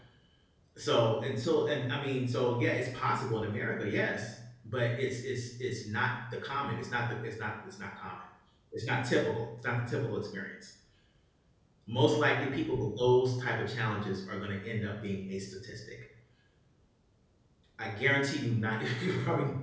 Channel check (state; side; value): identical; both; correlation 1.00